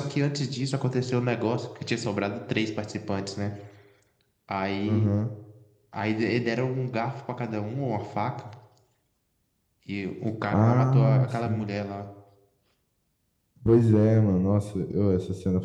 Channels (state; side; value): identical; both; correlation 1.00